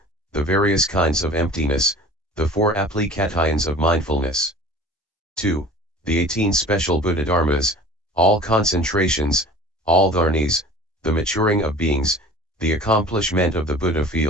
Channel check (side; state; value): both; normal; correlation 0.43